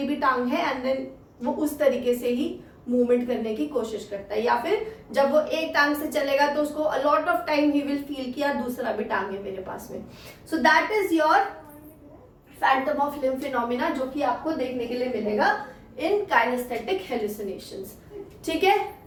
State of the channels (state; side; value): identical; both; correlation 1.00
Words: भी टांग है, एंड देन वो उस तरीके से ही मूवमेंट करने की कोशिश करता है। या फिर जब वो एक टांग से चलेगा तो उसको a lot of time he will feel कि यार दूसरा भी टांग है मेरे पास में। सो that is your Phantom of limb phenomena, जो कि आपको देखने के लिए मिलेगा इन काइनेस्थेटिक हेलुसिनेशंस, ठीक है।